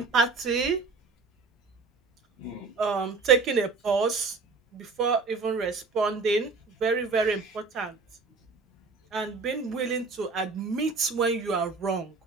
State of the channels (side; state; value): left; quieter; 4.2 dB